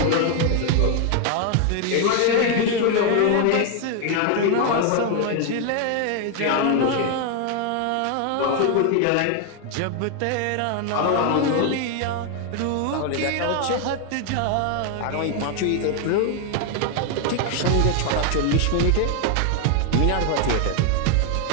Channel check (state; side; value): different; both; correlation 0.01